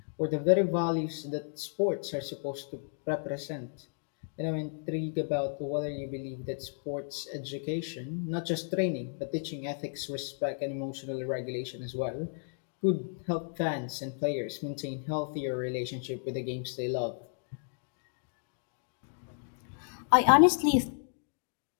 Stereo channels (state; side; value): silent; right; digital silence